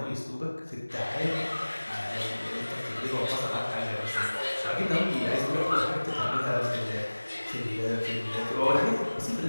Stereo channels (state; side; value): inverted; both; correlation -1.00